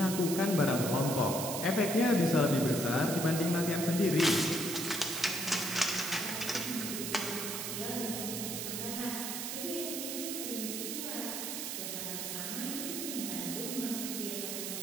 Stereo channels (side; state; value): right; noise; hiss, 4 dB below the sound